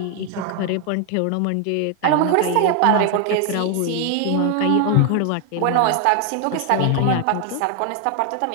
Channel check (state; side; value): different; both; correlation 0.01